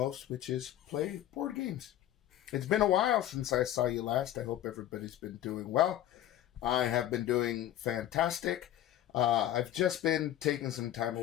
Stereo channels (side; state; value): right; quieter; 12.4 dB